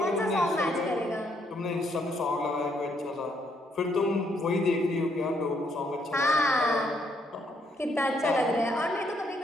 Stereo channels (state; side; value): normal; both; correlation 0.72